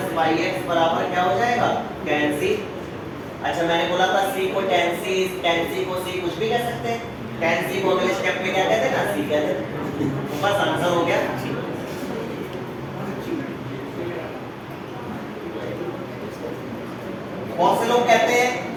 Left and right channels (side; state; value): both; identical; correlation 1.00